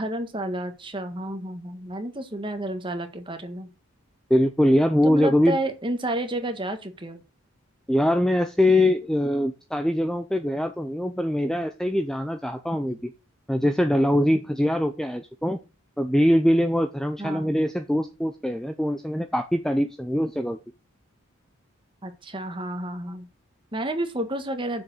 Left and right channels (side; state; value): both; normal; correlation 0.90